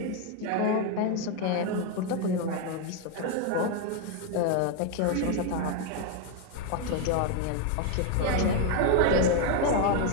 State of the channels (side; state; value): both; different; correlation 0.01